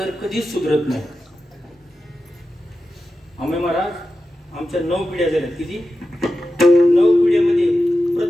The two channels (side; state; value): both; normal; correlation 0.92